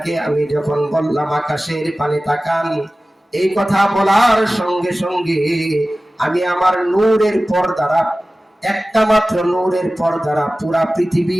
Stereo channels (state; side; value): normal; both; correlation 0.96